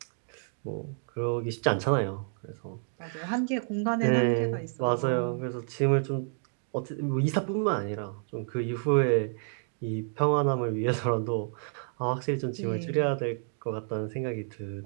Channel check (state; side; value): silent; left; 56 dB below the other